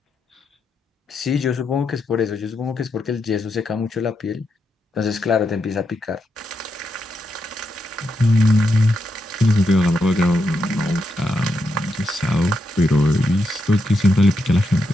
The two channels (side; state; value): both; normal; correlation 0.83